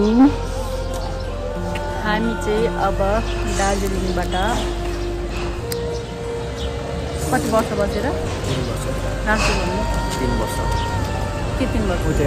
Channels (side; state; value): both; identical; correlation 1.00